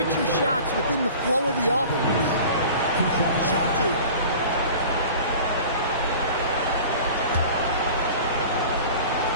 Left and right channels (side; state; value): both; inverted; correlation -0.41